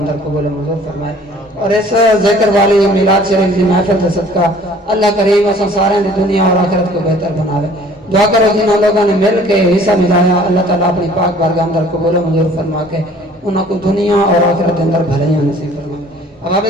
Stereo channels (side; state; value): both; normal; correlation 0.52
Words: قبول منظور فرمائے اور اس ذکر والی میلاد شریف کی محفل کا صدقہ اللہ کریم و سنسارا دی دنیا اور آخرت کو بہتر بناوے دعا کرو جنہوں لوگوں نے مل کے حصہ ملایا اللہ تعالیٰ اپنی پاک بار کا اندر قبول منظور فرما کے انہوں کو دنیا اور آخرت کے اندر بھلائیاں نصیب فرمائے